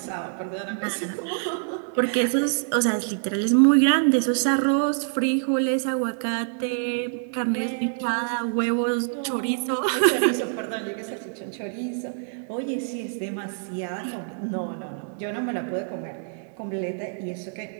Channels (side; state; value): left; silent; digital silence